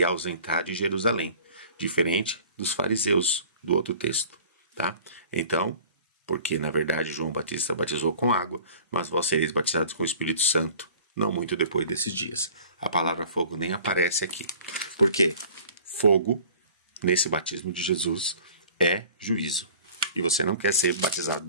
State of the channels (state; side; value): inverted; both; correlation -0.47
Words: ausentar de Jerusalém. Diferente dos fariseus do outro texto, tá? Então, porque na verdade João Batista batizou com água, mas vós sereis batizados com o Espírito Santo, não muito depois desses dias. A palavra fogo nem aparece aqui. Por quê? Fogo, nesse batismo de Jesus, é juízo. E você não quer ser batizado